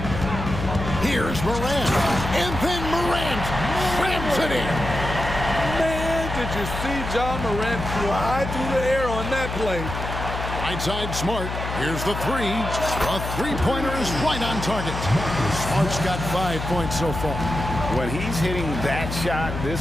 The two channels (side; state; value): left; noise; hum, 5 dB below the sound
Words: Here's Morant. And then Morant slams it in. Man, did you see Ja Morant fly through the air on that play? Right side Smart. Here's the three. A three-pointer is right on target. Smart's got 5 points so far. When he's hitting that shot,